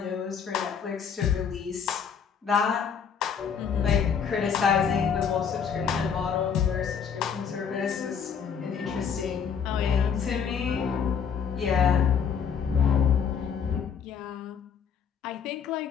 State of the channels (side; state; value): right; quieter; 7.0 dB